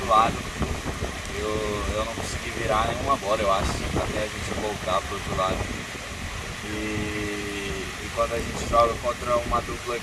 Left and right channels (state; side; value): identical; both; correlation 1.00